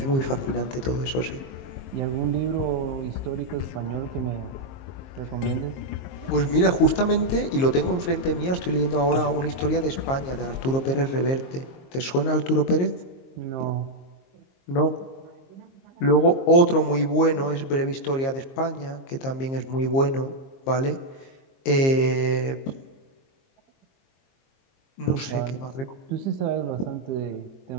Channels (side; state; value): right; late; 22 ms